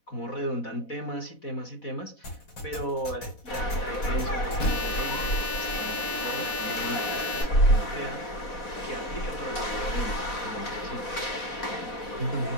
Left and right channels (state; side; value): late; right; 4.2 ms